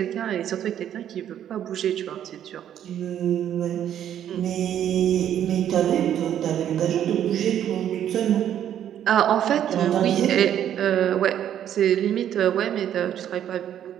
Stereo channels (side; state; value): left; quieter; 10.3 dB